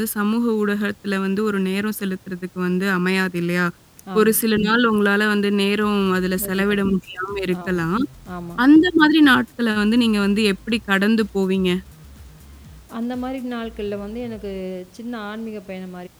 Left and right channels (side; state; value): both; identical; correlation 1.00